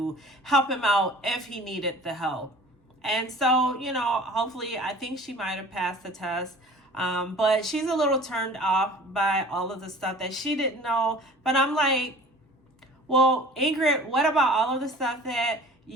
help him out if he needed the help. And so, you know, hopefully, I think she might have passed the test. But she's a little turned off by all of the stuff that she didn't know. But I'm like, well, Ingrid, what about all of the stuff that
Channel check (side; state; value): both; normal; correlation 0.45